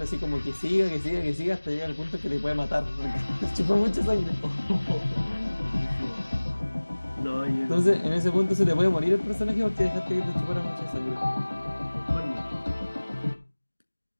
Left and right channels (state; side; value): inverted; both; correlation -1.00